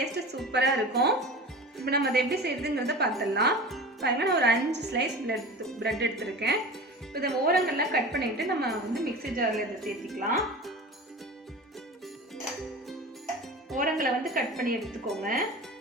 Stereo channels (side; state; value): both; normal; correlation 0.34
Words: சூப்பராக இருக்கும். இப்போ நம்ம அதை எப்படி செய்யுதுங்கிறத பார்த்துடலாம். பாருங்கள், நான் ஒரு 5 ஸ்லைஸ் பிரெட் எடுத்துருக்கேன். இதை ஓரங்கள்லாம் கட் பண்ணிவிட்டு நம்ம மிக்ஸி ஜாரில் இதை சேர்த்திக்கலாம். ஓரங்களை கட் பண்ணி எடுத்துக்கோங்க.